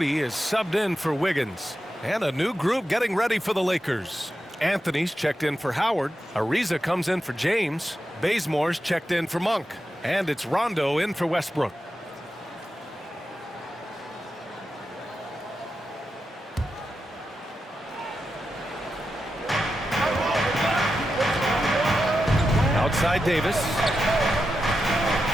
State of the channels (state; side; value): normal; both; correlation 0.89